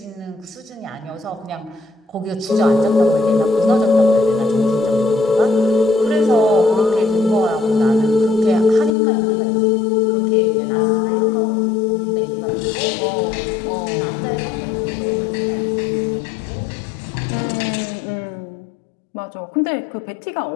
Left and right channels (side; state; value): right; drops out; at 9.0 s